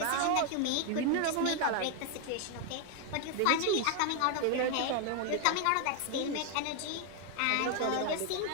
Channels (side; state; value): both; different; correlation 0.01